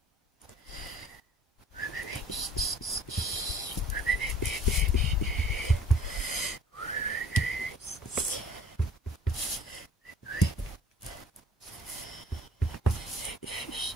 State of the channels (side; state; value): both; normal; correlation 0.51